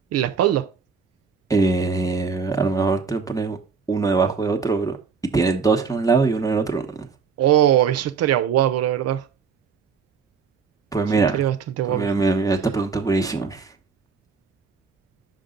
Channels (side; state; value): left; quieter; 5.6 dB